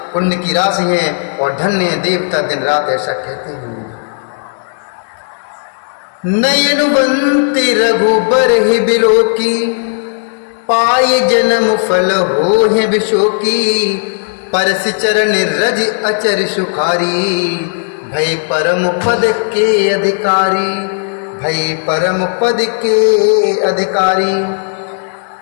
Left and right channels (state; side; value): silent; right; digital silence